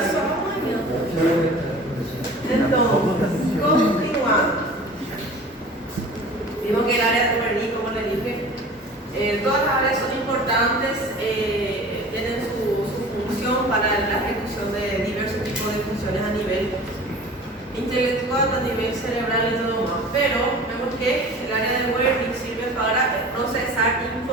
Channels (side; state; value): both; normal; correlation 0.41